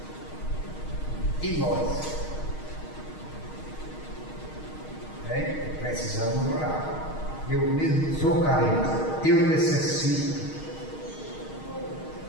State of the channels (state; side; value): late; right; 6.4 ms